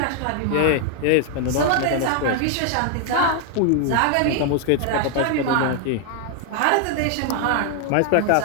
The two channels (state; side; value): different; both; correlation 0.00